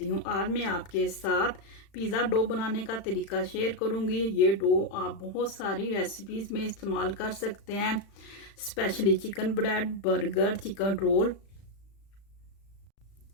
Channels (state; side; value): late; right; 35 ms